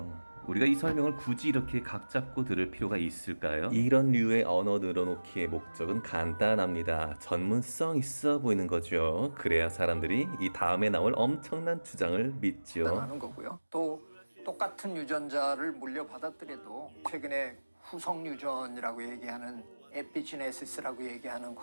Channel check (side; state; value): both; inverted; correlation -1.00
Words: 우리가 이 설명을 굳이 이렇게 각 잡고 들을 필요가 있을까요? 이런 류의 언어 늘어놓기의 목적은 간단합니다. 전문성 있어 보이는 거죠. 그래야 사람들이 이 다음에 나올 엄청난 주장을 믿죠. 하는 거고요. 또 똑같은 유전자를 물려받았더라도 최근에 후속 유전이라고 얘기하는 에피지네시스라고 얘기하는